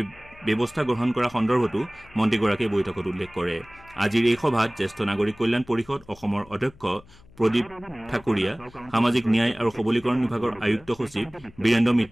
ব্যৱস্থা গ্ৰহণ কৰা সন্দৰ্ভতো মন্ত্ৰীগৰাকীয়ে বৈঠকত উল্লেখ কৰে। আজিৰ এই সভাত জ্যেষ্ঠ নাগৰিক কল্যাণ পৰিষদ অসমৰ অধ্যক্ষ প্ৰদীপ ঠাকুৰীয়া, সামাজিক ন্যায় আৰু সবলীকৰণ বিভাগৰ আয়ুক্ত সচিব বীৰেন্দ্ৰ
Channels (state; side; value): noise; left; hum, 25 dB below the sound